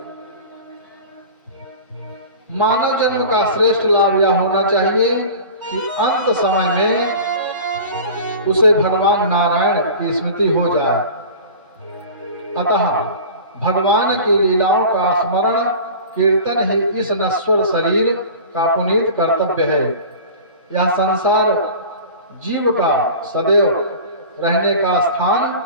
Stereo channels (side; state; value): both; inverted; correlation -0.38